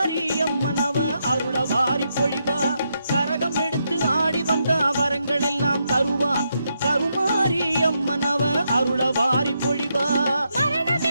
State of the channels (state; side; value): inverted; both; correlation -0.81